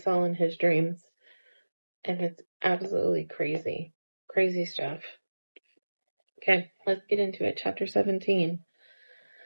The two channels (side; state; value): both; inverted; correlation -1.00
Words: saw in his dreams, and it's absolutely crazy. Crazy stuff. Okay, let's get into it. Chapter 17.